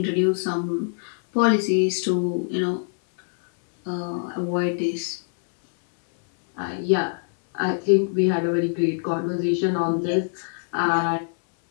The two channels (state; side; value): silent; right; 63 dB below the other